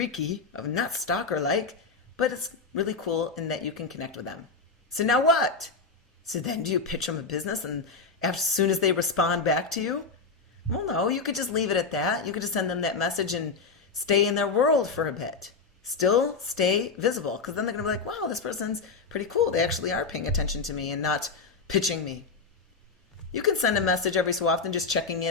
not stalker-like, but it's really cool in that you can connect with them. So now what? So then do you pitch them a business and as soon as they respond back to you? Well, no, you could just leave it at that. You could just send them that message and stay in their world for a bit. Still stay visible, because then they're going to be like, wow, this person's pretty cool. They actually are paying attention to me and not pitching me. You can send a message every so often just checking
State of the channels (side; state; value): right; quieter; 4.5 dB